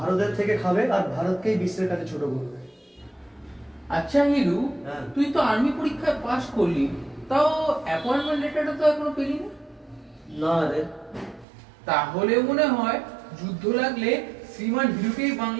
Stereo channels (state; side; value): drops out; left; at 11.5 s